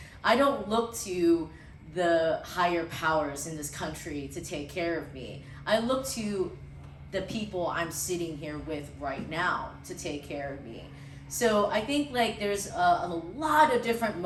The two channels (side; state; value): both; identical; correlation 1.00